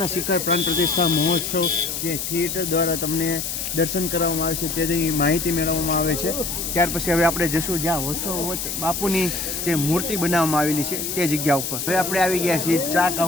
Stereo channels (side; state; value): left; noise; hiss, 4 dB below the sound